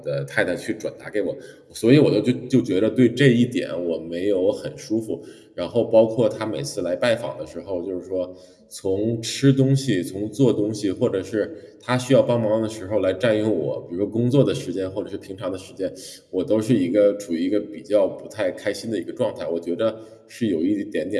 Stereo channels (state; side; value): identical; both; correlation 1.00